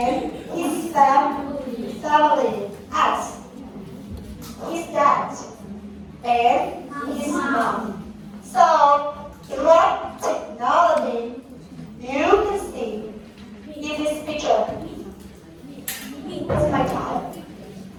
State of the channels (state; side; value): identical; both; correlation 1.00